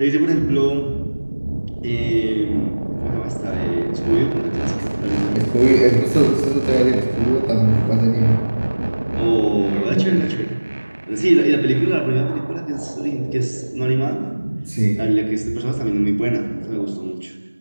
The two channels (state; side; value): inverted; both; correlation -1.00